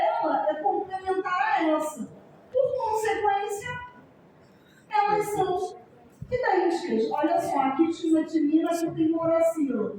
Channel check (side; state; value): both; identical; correlation 1.00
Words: é complementar a essa. Por consequência, elas são idênticas. Olha só, aqui tinha uma timina, aqui tem uma uracila.